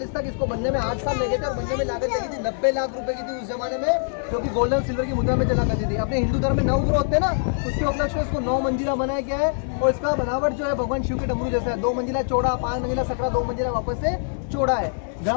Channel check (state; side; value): silent; right; digital silence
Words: तक इसको बनने में 8 साल लगे थे और बनने में लागत लगी थी 90 लाख रुपए की थी उस जमाने में, जो कि गोल्डन सिल्वर की मुद्रा में चला करती थी. अपने हिंदू धर्म में 9 ग्रह होते हैं ना, उसके उपलक्ष्य में इसको 9 मंजिला बनाया गया है. और इसका बनावट जो है भगवान शिव के डमरू जैसा है. 2 मंजिला चौड़ा, 5 मंजिला सकरा, 2 मंजिला वापस से चौड़ा है.